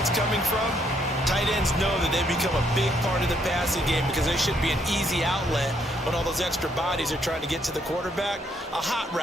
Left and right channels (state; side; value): normal; both; correlation 0.71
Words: it's coming from, tight ends know that they become a big part of the passing game because they should be an easy outlet when all those extra bodies are trying to get to the quarterback. A hot